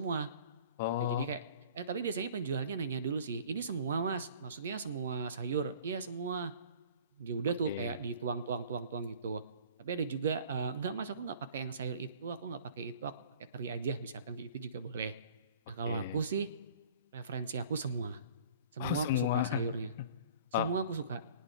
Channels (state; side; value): inverted; both; correlation -0.48